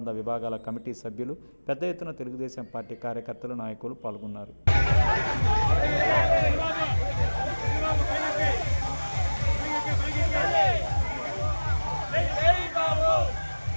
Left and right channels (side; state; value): both; inverted; correlation -1.00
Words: విభాగాల కమిటీ సభ్యులు, పెద్ద ఎత్తున తెలుగుదేశం పార్టీ కార్యకర్తలు, నాయకులు పాల్గొన్నారు.